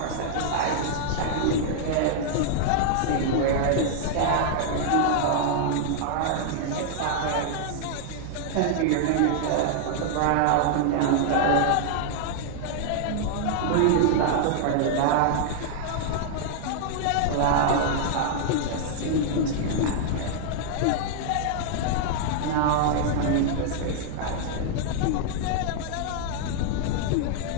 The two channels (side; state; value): both; different; correlation -0.01